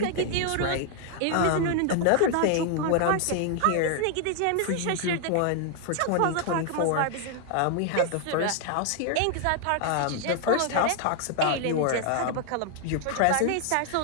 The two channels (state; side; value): different; both; correlation 0.00